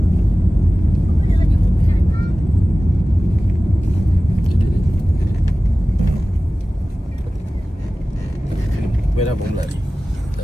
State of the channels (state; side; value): normal; both; correlation 0.97